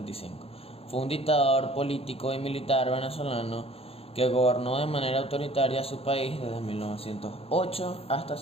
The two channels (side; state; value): right; late; 0.28 ms